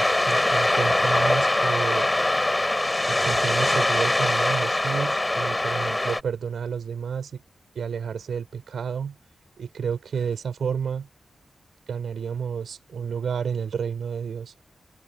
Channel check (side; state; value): both; normal; correlation 0.93